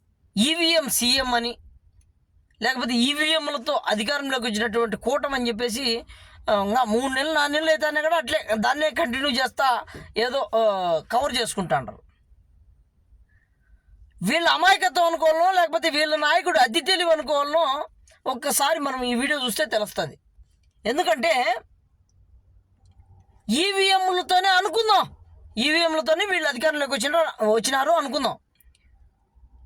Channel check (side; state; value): both; identical; correlation 1.00